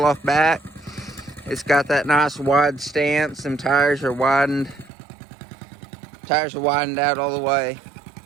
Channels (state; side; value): drops out; left; at 4.9 s